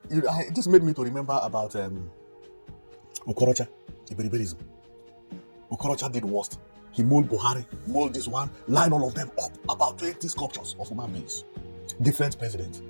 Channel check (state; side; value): inverted; both; correlation -1.00